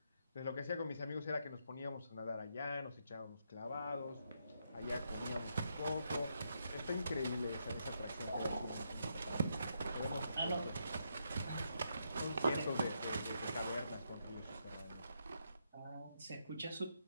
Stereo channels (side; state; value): both; inverted; correlation -0.79